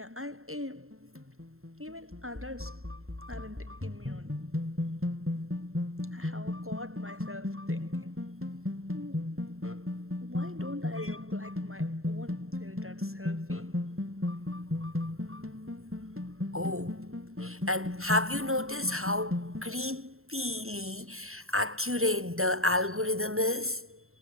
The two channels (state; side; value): late; left; 0.62 ms